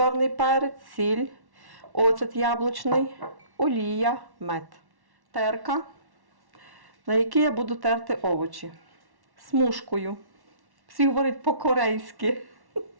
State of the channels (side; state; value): left; late; 1.1 ms